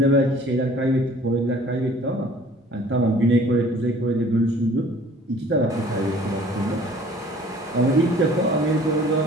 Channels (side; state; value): both; normal; correlation 0.51